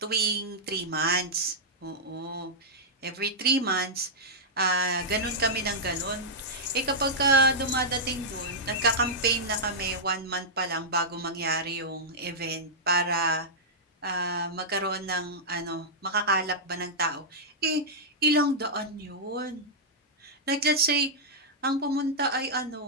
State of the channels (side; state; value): both; normal; correlation -0.09